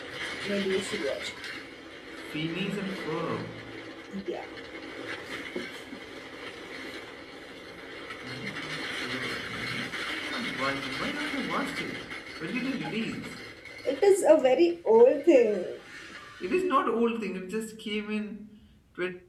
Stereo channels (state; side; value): identical; both; correlation 1.00